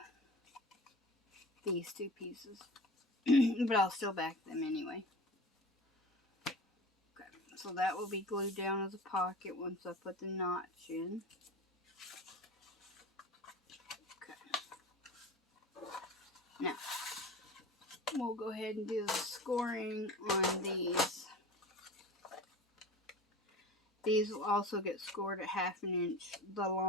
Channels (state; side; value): normal; both; correlation 0.35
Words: these two pieces. But I'll still back them anyway. Okay, so that will be glued down as a pocket once I put the notch in. Okay. Now, we'll go ahead and do the scoring on these. These will also get scored at 1/2 inch the